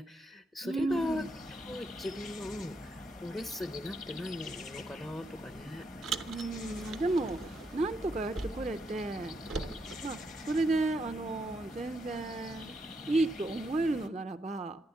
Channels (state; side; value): normal; both; correlation 0.79